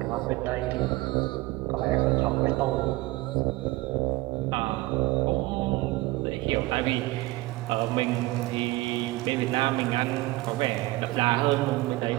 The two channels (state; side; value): quieter; left; 20.0 dB